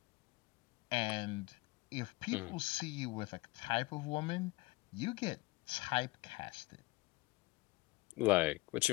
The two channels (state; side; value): quieter; right; 22.4 dB